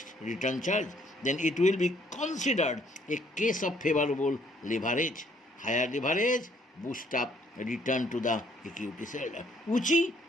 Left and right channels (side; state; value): both; normal; correlation 0.65